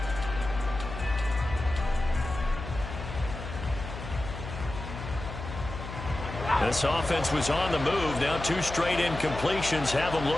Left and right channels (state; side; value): noise; left; hum, 9 dB below the sound